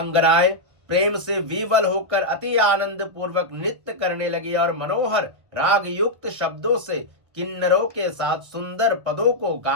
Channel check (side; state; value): left; late; 1.1 ms